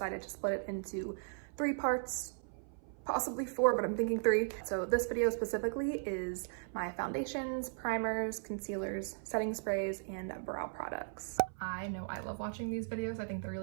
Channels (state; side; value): silent; left; 53 dB below the other